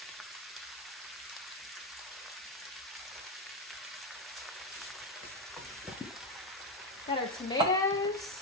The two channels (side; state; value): both; normal; correlation 0.09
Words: Got our tomatoes.